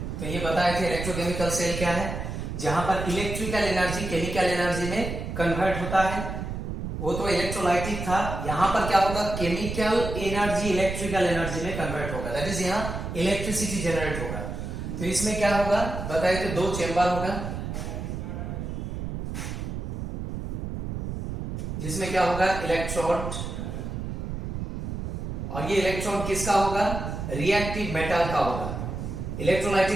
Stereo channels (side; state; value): right; noise; rumble, 5 dB below the sound